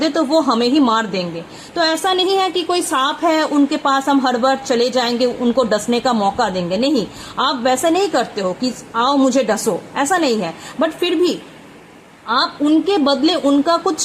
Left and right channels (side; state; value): both; identical; correlation 1.00